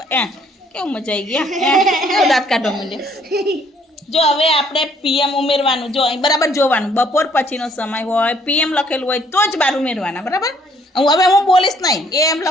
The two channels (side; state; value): both; normal; correlation 0.64